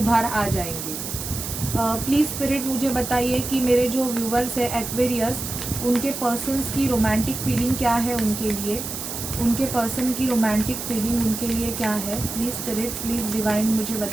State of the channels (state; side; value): noise; right; hiss, 6 dB below the sound